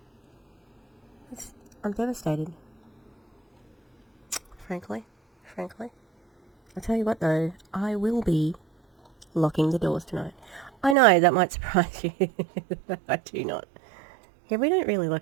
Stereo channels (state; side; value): drops out; left; at 11.0 s